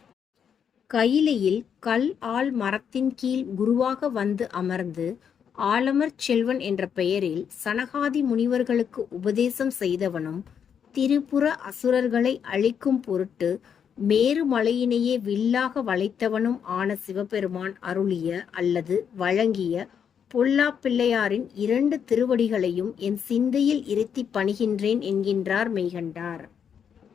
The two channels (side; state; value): right; quieter; 7.7 dB